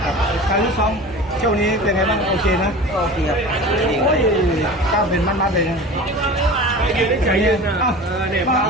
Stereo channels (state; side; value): normal; both; correlation 0.35